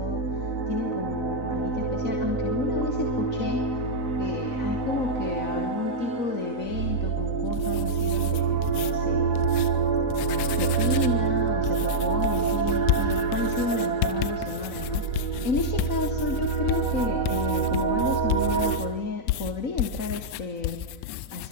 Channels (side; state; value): right; late; 4.0 ms